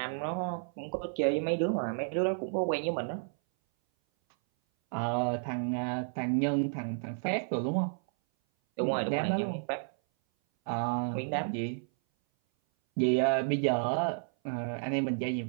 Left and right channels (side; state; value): left; silent; 57 dB below the other